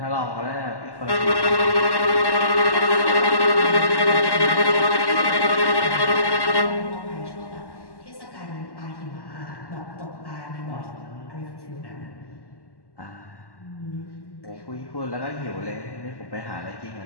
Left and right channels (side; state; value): right; late; 1.1 ms